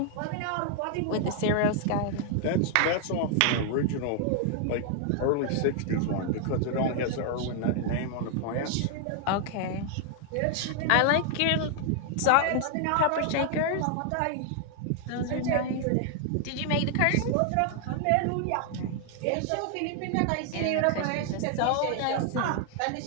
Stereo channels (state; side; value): different; both; correlation 0.00